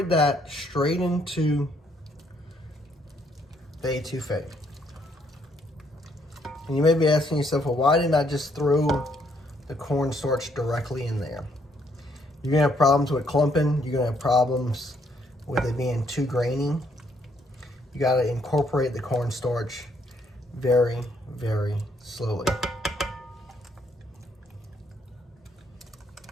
that straight into the etouffee. And you may be asking yourself, well, why didn't I just throw the cornstarch directly in there? You're going to have problems with clumping. You're going to have problems with it being too grainy. You got to incorporate the cornstarch very, very slowly.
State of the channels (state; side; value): normal; both; correlation 0.70